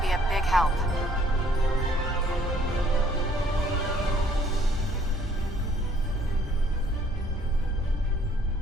be a big help.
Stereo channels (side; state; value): both; normal; correlation 0.62